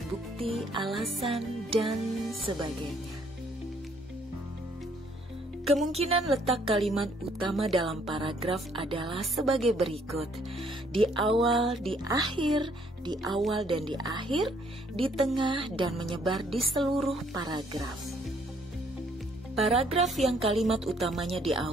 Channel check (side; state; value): both; normal; correlation 0.65